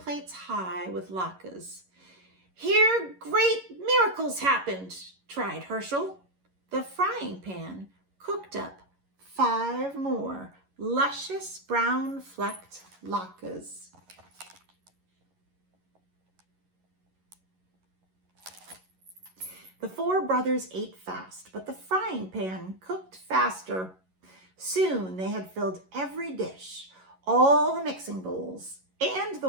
high with latkes. Here great miracles happened, tried Herschel. The frying pan cooked up 5 more luscious brown flecked latkes. The 4 brothers ate fast, but the frying pan cooked faster. Soon they had filled every dish, all the mixing bowls, and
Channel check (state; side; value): late; left; 11 ms